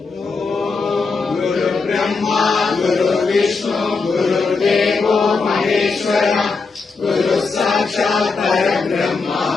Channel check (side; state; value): right; quieter; 4.4 dB